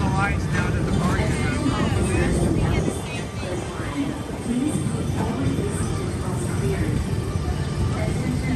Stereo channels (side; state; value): both; identical; correlation 1.00